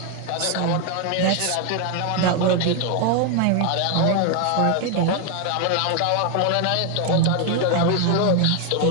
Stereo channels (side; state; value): both; different; correlation 0.01